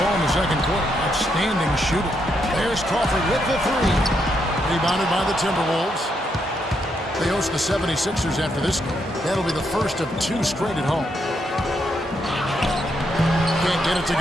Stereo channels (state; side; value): normal; both; correlation 0.78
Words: in the second quarter. Outstanding shooting. There's Crawford with the 3. Rebounded by the Timberwolves. They host the 76ers after this game. That'll be the first of 2 straight at home. Can't get it to